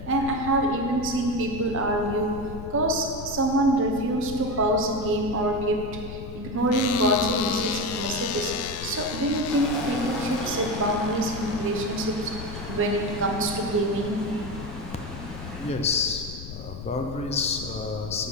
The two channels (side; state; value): left; noise; rumble, 10 dB below the sound